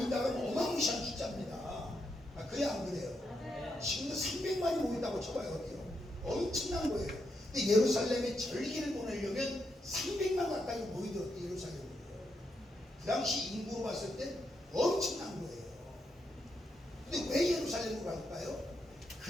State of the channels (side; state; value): both; normal; correlation 0.81